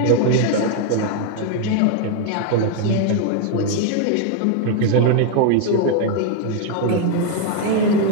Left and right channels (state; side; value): different; both; correlation 0.00